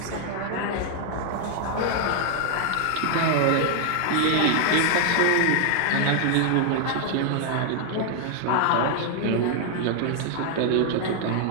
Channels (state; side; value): different; both; correlation 0.00